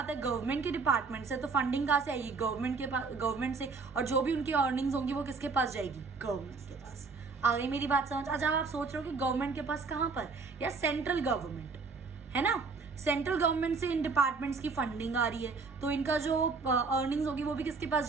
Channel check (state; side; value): quieter; left; 4.5 dB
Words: है, गवर्नमेंट के डिपार्टमेंट से, तो फंडिंग कहाँ से आएगी? गवर्नमेंट से। और जो भी उनकी अर्निंग्स होंगी वो किसके पास जाएगी? गवर्नमेंट के पास। आ गई मेरी बात समझ? अच्छा, आप सोच रहे हो कि गवर्नमेंट के पास कहाँ पर? या सेंट्रल गवर्नमेंट, है ना? सेंट्रल गवर्नमेंट से इन डिपार्टमेंट्स की फंडिंग आ रही है, तो इनका जो अर्निंग्स होगी वो भी किसके पास